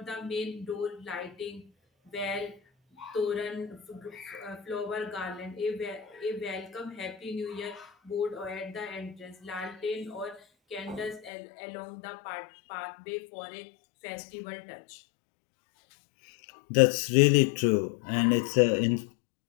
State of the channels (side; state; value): right; drops out; at 11.3 s